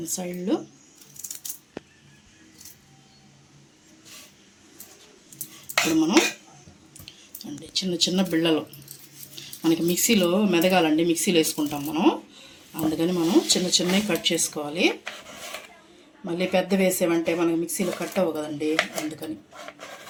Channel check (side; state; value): both; identical; correlation 1.00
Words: సైడ్లు ఇప్పుడు మనం అండి చిన్న చిన్న బిళ్ళలు మనకి మిక్సీలో మెదగాలండి, మిక్సీలో వేసుకుంటాం మనం. అందుకని మనం చిన్న చిన్నవి కట్ చేసుకోవాలి. మళ్ళీ పెద్ద వేసేవంటే మనకి మిక్సీలో కట్ అవ్వ కదండి, అందుకని